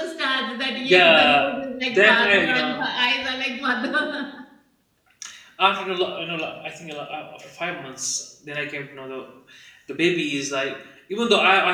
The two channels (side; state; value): both; identical; correlation 1.00